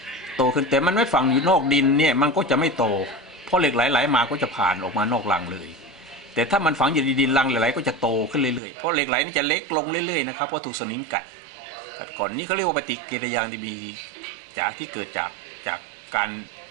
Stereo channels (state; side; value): drops out; left; at 8.6 s